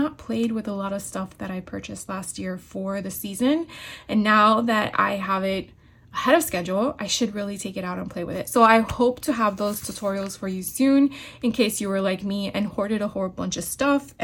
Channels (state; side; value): identical; both; correlation 1.00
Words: played with a lot of stuff that I purchased last year for the season. And now that I have it ahead of schedule, I should really take it out and play with it. So I hope to have those tutorials for you soon, in case you were like me and hoarded a whole bunch of stuff